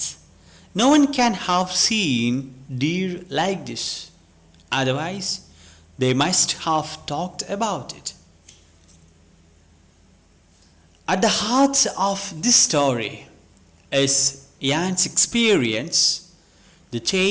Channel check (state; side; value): identical; both; correlation 1.00